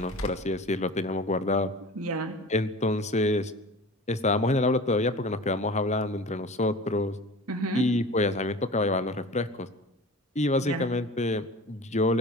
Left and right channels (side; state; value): both; normal; correlation 0.38